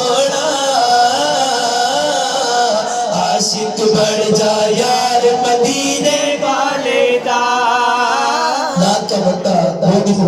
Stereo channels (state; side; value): identical; both; correlation 1.00